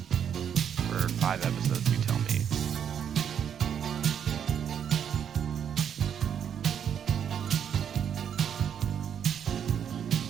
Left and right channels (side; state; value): left; quieter; 8.4 dB